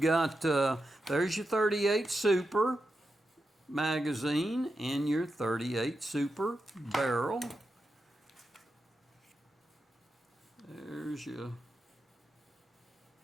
got, there's your 38 Super magazine and your 38 Super barrel. There's your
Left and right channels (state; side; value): normal; both; correlation 0.88